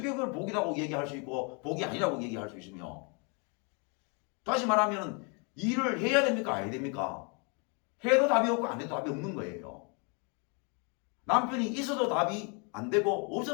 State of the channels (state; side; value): quieter; right; 34.8 dB